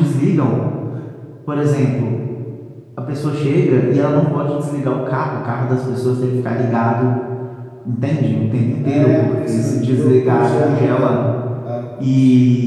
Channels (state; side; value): identical; both; correlation 1.00